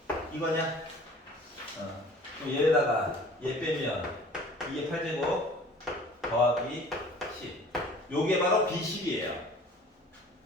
이거냐? 그럼 얘에다가 얘 빼면 2의 8제곱 더하기 10. 요게 바로 B10이에요.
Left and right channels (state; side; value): normal; both; correlation 0.48